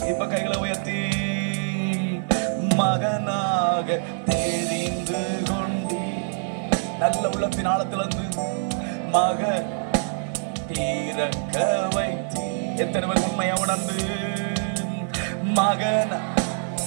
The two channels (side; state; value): left; silent; 60 dB below the other